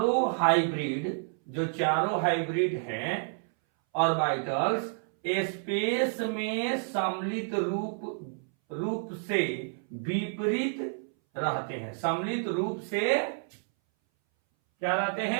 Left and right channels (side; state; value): left; silent; 58 dB below the other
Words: हाइब्रिड हैं ऑर्बिटल्स स्पेस में सम्मिलित रूप से विपरीत रहते हैं। सम्मिलित रूप से क्या रहते